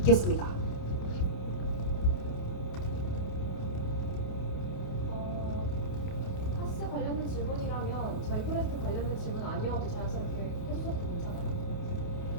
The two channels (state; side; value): late; right; 28 ms